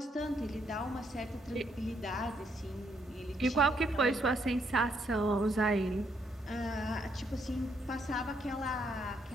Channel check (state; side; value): normal; both; correlation 0.74